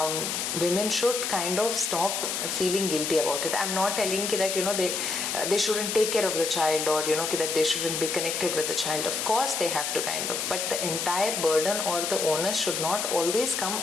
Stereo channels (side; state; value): left; noise; hiss, 2 dB below the sound